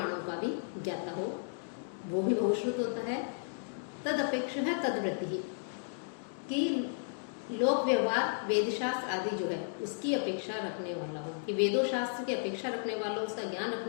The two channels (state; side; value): silent; right; digital silence